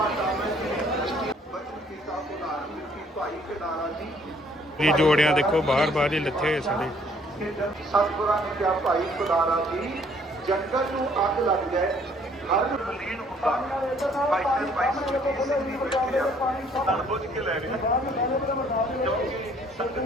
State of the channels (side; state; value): both; normal; correlation 0.62